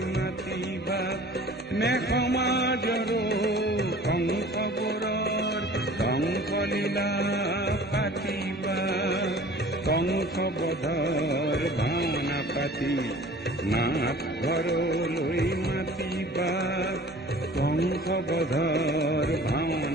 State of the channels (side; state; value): both; normal; correlation 0.46